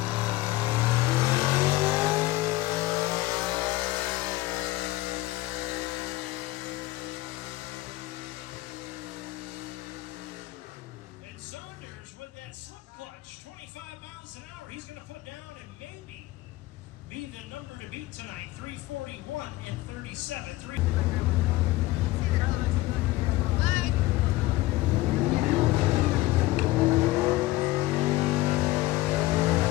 Saunders with that slip clutch. power. He's going to put down and maybe be the number to beat tonight. 341 and 37. Bye.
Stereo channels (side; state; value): right; quieter; 18.2 dB